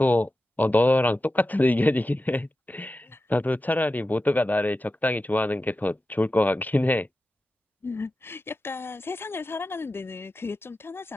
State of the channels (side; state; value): both; normal; correlation 0.93